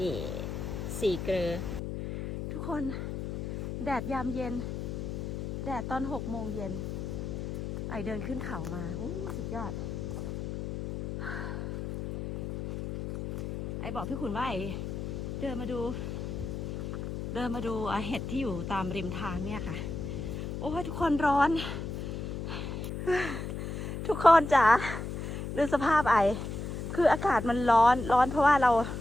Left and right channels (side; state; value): left; noise; hum, 5 dB below the sound